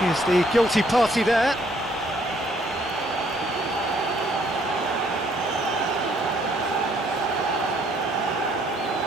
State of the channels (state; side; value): normal; both; correlation 0.65